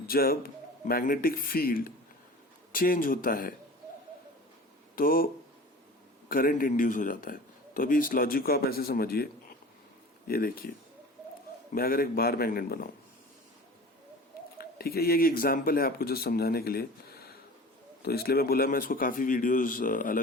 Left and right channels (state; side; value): normal; both; correlation 0.40